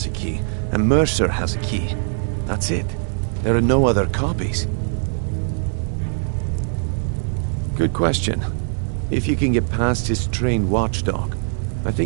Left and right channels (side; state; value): left; silent; digital silence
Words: a key, and Mercer has a key. That's it. There are no other copies. Good question. If you can get past his trained watchdog, I